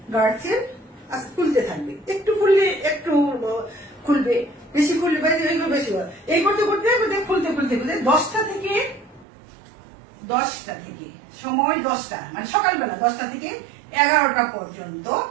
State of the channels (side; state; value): left; drops out; at 9.2 s